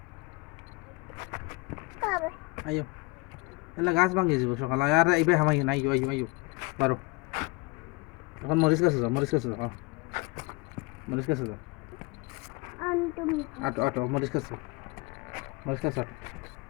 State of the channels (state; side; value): quieter; right; 25.2 dB